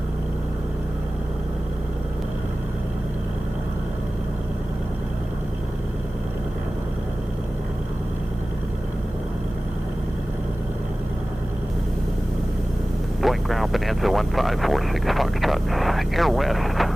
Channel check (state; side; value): normal; both; correlation 0.97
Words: Boeing ground Bonanza 1546 Foxtrot. Air West,